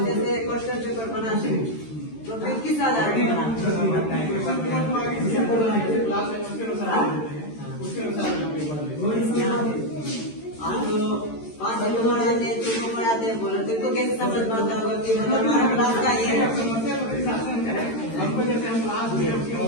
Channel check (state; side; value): late; right; 13 ms